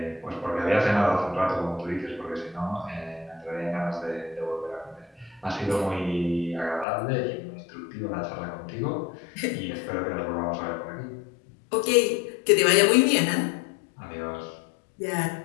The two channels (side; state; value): right; drops out; at 6.9 s